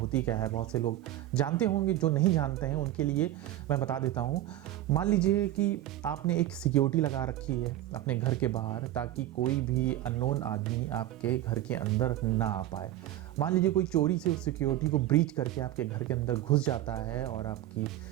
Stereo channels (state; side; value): quieter; left; 13.8 dB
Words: क्या है। बहुत से लोग जानते होंगे, जो नहीं जानते हैं उनके लिए मैं बता देता हूँ। मान लीजिए कि आपने एक सिक्योरिटी लगा रखी है अपने घर के बाहर, ताकि कोई भी अननोन आदमी आपके घर के अंदर ना आ पाए। मान लीजिए कोई चोरी से उस सिक्योरिटी को ब्रीच करके आपके घर के अंदर घुस जाता है और आपकी